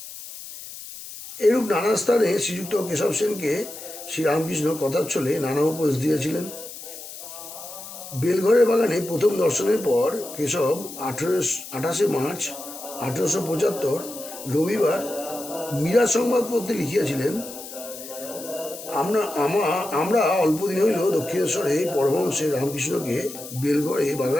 এরূপ নানা স্থানে শ্রীযুক্ত কেশব সেনকে শ্রীরামকৃষ্ণ কথার ছলে নানা উপদেশ দিয়েছিলেন। বেলঘরের বাগানে প্রথম দর্শনের পর কেশব 28 মার্চ 1875 রবিবার মীরা সংবাদপত্রে লিখিয়াছিলেন, আমরা অল্পদিন হইল দক্ষিণেশ্বরে পরমহংসের রামকৃষ্ণকে বেলঘরে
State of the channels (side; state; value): left; noise; hiss, 13 dB below the sound